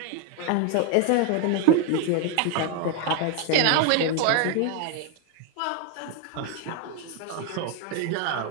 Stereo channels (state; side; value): different; both; correlation 0.01